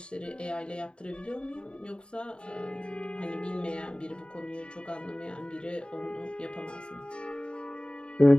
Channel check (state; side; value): late; right; 0.051 ms